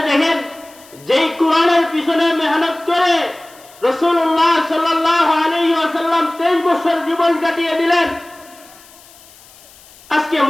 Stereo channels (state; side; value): noise; left; hiss, 24 dB below the sound